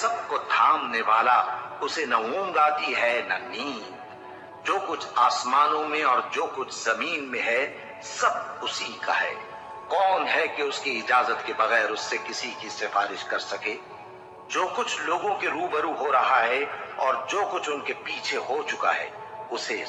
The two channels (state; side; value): identical; both; correlation 1.00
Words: کو تھامنے والا، اسے نہ اونگ آتی ہے نہ نیند۔ جو کچھ آسمانوں میں اور جو کچھ زمین میں ہے سب اسی کا ہے۔ کون ہے کہ اس کی اجازت کے بغیر اس سے کسی کی سفارش کر سکے؟ جو کچھ لوگوں کے روبرو ہو رہا ہے اور جو کچھ ان کے پیچھے ہو چکا ہے اسے